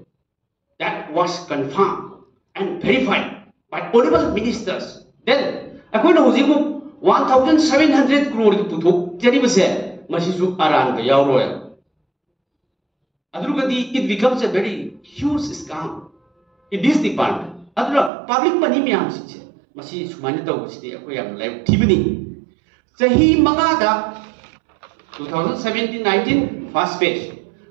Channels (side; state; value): left; drops out; at 18.1 s